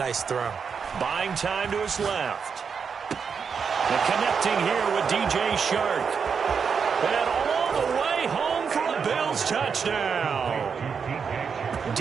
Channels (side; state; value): left; quieter; 6.2 dB